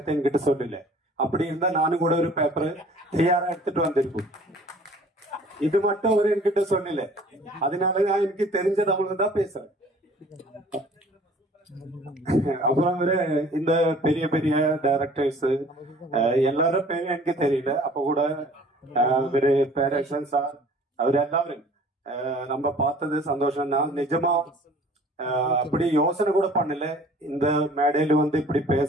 என்கிட்ட சொல்லல. அப்படி இருந்தா நானும் கூட ஒரு பேப்பர் தயாரா எடுத்துட்டு வந்திருக்கும். இது மட்டும் அவரு என்கிட்ட சொல்லல. அதனால நான் எனக்கு தெரிஞ்ச தமிழ் தான் பேசுறேன். அப்புறம் இந்த பெரிய பெரிய டைரக்டர்ஸ் எல்லாரும் பேரும் எனக்கு தெரியல. அப்ப கூட பேரக்ஷன் சார் அவர் எல்லாரும் நம்ம பார்த்தது சந்தோஷம் தான். நிஜமா அப்படி யோசனை கூட பண்ணல இந்த மேடையில இப்படி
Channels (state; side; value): normal; both; correlation 0.51